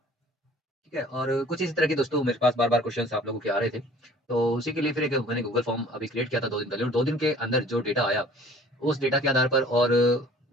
ठीक है? और कुछ इसी तरह के दोस्तों मेरे पास बार-बार क्वेश्चन्स आप लोगों के आ रहे थे। तो उसी के लिए फिर एक मैंने गूगल फॉर्म अभी क्रिएट किया था 2 दिन पहले और 2 दिन के अंदर जो डेटा आया, उस डेटा के आधार पर और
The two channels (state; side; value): normal; both; correlation 0.51